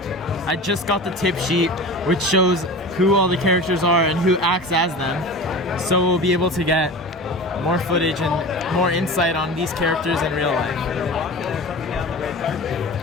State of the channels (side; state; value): both; normal; correlation 0.33